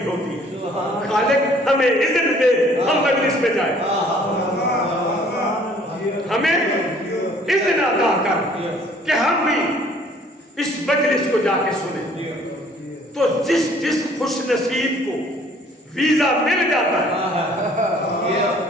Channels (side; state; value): both; normal; correlation 0.57